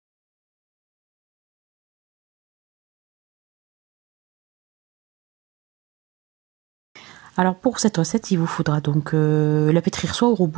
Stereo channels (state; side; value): quieter; left; 21.1 dB